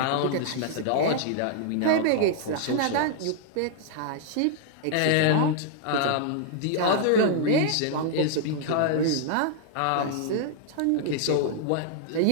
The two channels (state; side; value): different; both; correlation -0.01